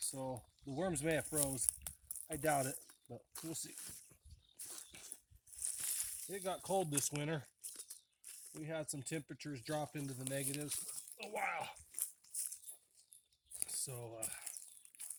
the worms may have froze. I doubt it, but we'll see. It got cold this winter. We had some temperatures drop into the negatives a while. So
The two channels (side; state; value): both; identical; correlation 1.00